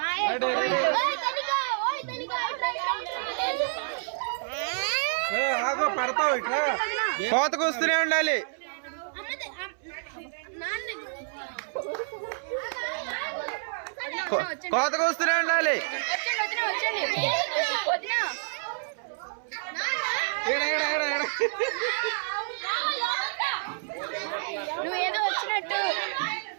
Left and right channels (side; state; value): left; silent; 59 dB below the other